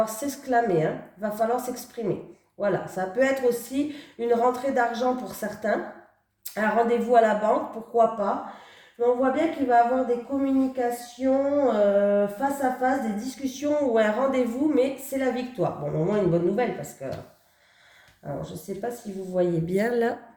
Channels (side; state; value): both; identical; correlation 1.00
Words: s'exclamer, hein. Il va falloir s'exprimer. Voilà, ça peut être aussi une rentrée d'argent pour certains, un rendez-vous à la banque, pourquoi pas. Mais on voit bien qu'il va y avoir des communications face à face, des discussions ou un rendez-vous, mais c'est la victoire. Bon, au moins une bonne nouvelle parce que... Alors, je ne sais pas si vous voyez bien là.